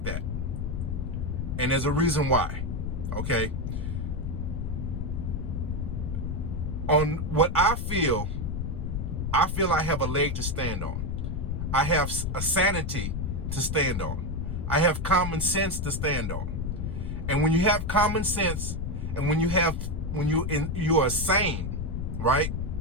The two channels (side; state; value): left; noise; rumble, 2 dB below the sound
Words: that. And there's a reason why. Okay. On what I feel I have a leg to stand on. I have a sanity to stand on. I have common sense to stand on. And when you have common sense, and when you are sane, right?